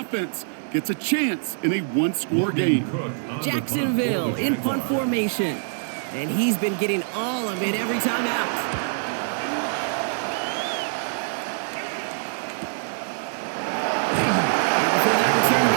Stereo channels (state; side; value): silent; left; digital silence